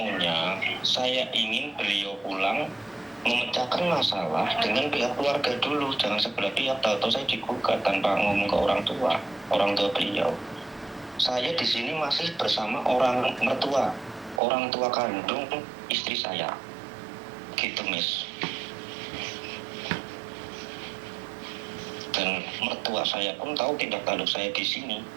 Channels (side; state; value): left; drops out; at 14.4 s